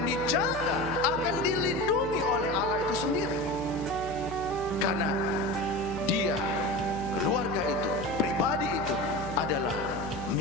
dijaga, akan dilindungi oleh Allah itu sendiri. Karena dia, keluarga itu, pribadi itu adalah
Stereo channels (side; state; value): left; noise; hum, 12 dB below the sound